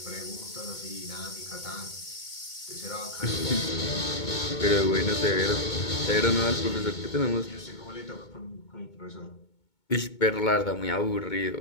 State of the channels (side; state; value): right; late; 2.2 ms